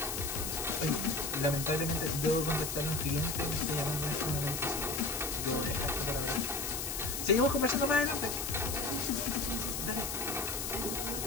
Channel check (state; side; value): noise; left; hiss, 3 dB below the sound